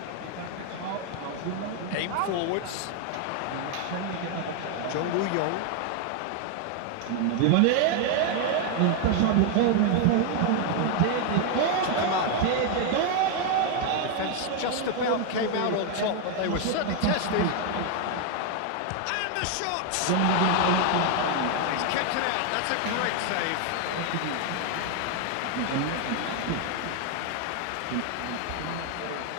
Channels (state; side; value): different; both; correlation 0.00